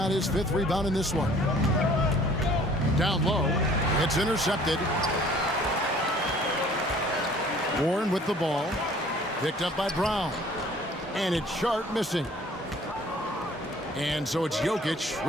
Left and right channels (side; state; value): both; normal; correlation 0.53